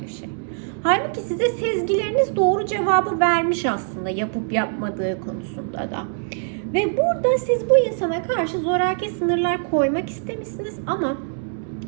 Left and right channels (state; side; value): silent; left; digital silence